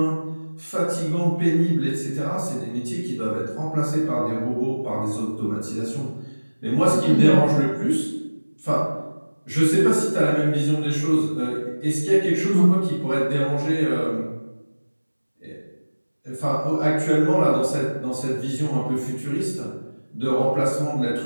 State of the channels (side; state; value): both; inverted; correlation -1.00